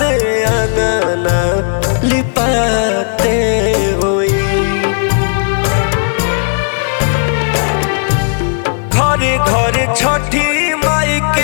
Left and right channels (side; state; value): right; silent; 71 dB below the other